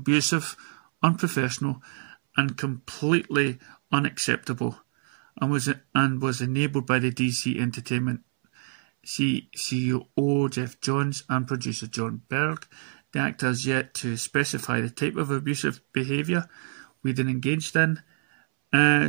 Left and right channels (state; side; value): silent; left; 61 dB below the other